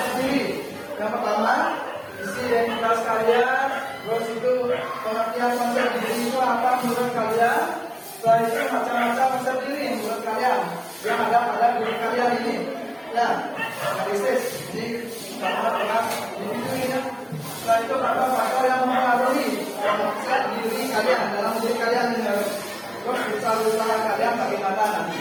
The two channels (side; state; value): both; identical; correlation 1.00